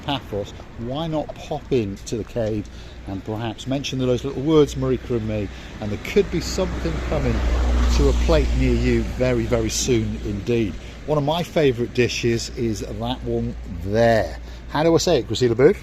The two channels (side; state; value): both; identical; correlation 1.00